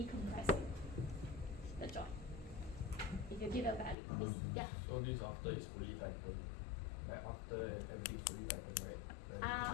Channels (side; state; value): right; drops out; at 4.0 s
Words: the joint. If you give a value, it's, yeah. So this after it's fully tightened, like after everything's fully tightened, right?